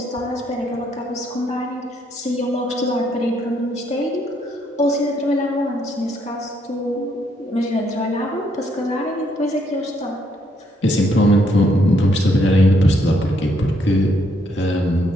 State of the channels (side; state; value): both; normal; correlation 0.72